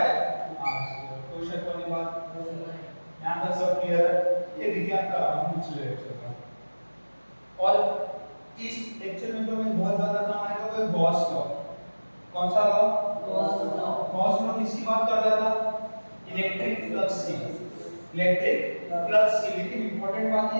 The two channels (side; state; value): both; inverted; correlation -1.00